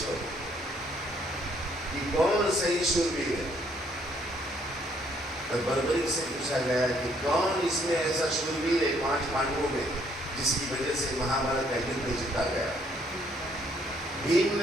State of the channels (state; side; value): normal; both; correlation 0.67